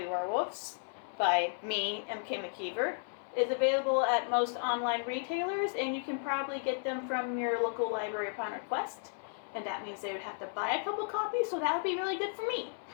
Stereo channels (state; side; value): silent; right; 55 dB below the other